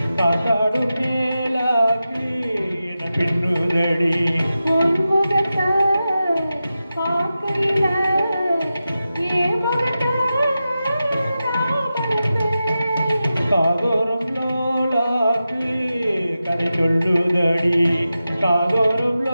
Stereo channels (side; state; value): both; inverted; correlation -0.92